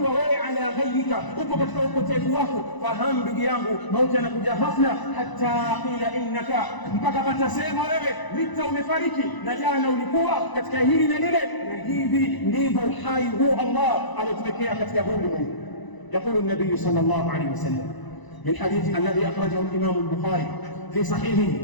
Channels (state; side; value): late; right; 1.0 ms